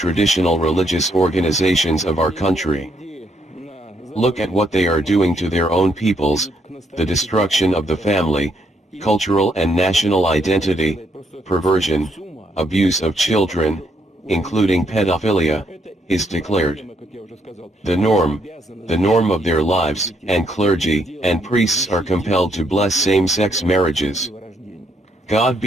religious organizations of our country. Look at what they are doing to their own peoples: the destruction of the family, cultural and national identity, perversion, abuse of children, including pedophilia, is declared the norm of their lives, and clergy and priests are compelled to bless same-sex marriages. God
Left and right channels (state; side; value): normal; both; correlation 0.74